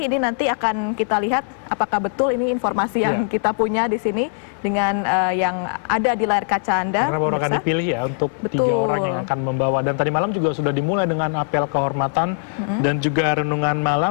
ini nanti akan kita lihat apakah betul ini informasi yang kita punya di sini dengan yang ada di layar kaca Anda. Karena baru akan dipilih ya untuk 3 orang yang akan membawa. Dan tadi malam juga sudah dimulai dengan apel kehormatan dan juga renungan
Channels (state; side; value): silent; right; 58 dB below the other